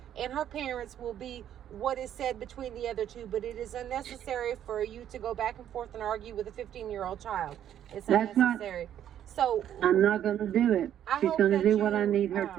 and her parents will be what is said between the other two, but it is unnecessary for you to go back and forth and argue with a 15-year-old child. It's unnecessary. So I'm not going to do it. She's going to do what I need her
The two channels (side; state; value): left; quieter; 10.5 dB